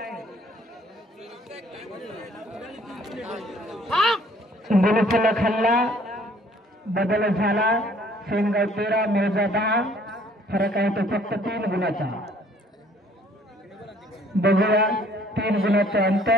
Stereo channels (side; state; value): both; normal; correlation 0.59